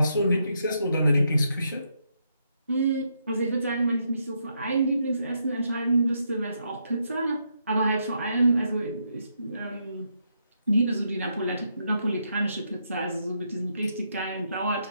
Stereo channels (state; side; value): inverted; both; correlation -0.79